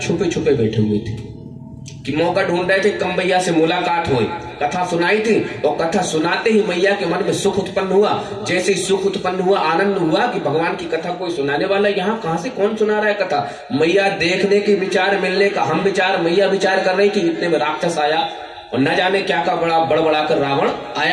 छुपे बैठे हुए थे कि मौका ढूंढ रहे थे कम मैया से मुलाकात हुई। कथा सुनाई थी और कथा सुनाते ही मैया के मन में सुख उत्पन्न हुआ। जैसे ही सुख उत्पन्न हुआ, आनंद हुआ कि भगवान की कथा कोई सुनाने वाला, यहाँ कहां से कौन सुना रहा है कथा। मैया देखने की विचार, मिलने का हम विचार, मैया विचार कर रही कि इतने में राक्षस आया और न जाने क्या का बड़ा बड़बड़ा कर रावण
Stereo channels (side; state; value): both; identical; correlation 1.00